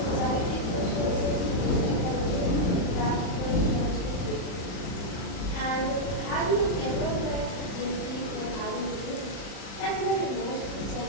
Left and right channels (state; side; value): late; right; 39 ms